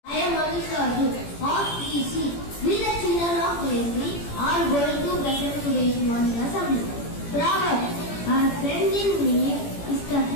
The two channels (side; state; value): right; late; 17 ms